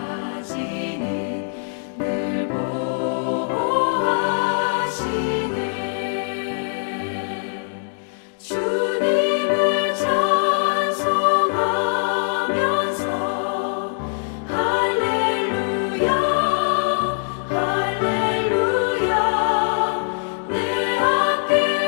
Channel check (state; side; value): silent; right; digital silence